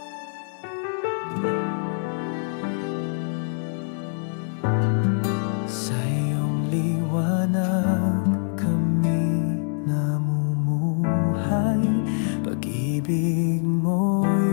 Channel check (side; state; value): right; silent; 62 dB below the other